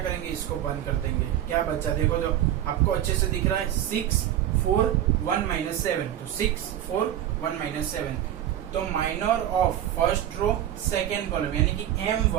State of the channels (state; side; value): quieter; left; 11.7 dB